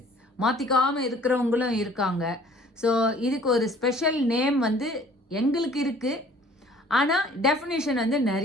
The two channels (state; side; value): normal; both; correlation 0.53